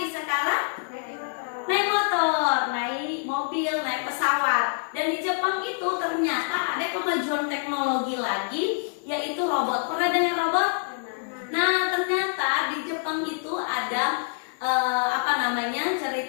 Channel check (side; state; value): right; silent; digital silence